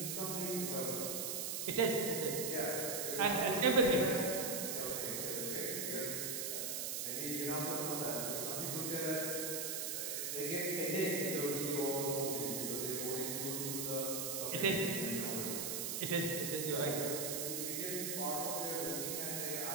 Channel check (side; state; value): right; noise; hiss, 1 dB below the sound